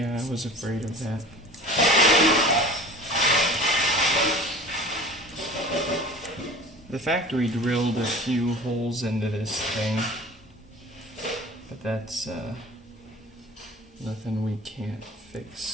I was afraid of that. The factory drilled a few holes into this thing, but that's nothing we can't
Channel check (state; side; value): normal; both; correlation 0.41